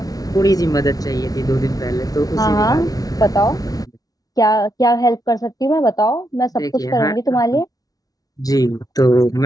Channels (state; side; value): late; right; 0.18 ms